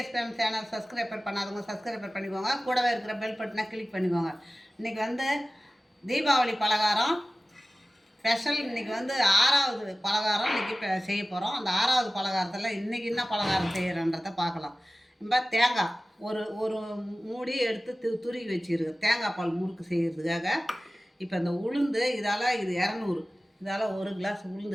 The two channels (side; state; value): both; normal; correlation 0.96